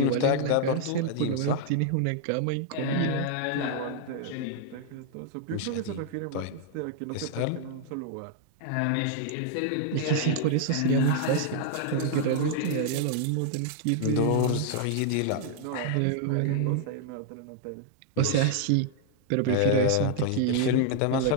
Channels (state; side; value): different; both; correlation -0.01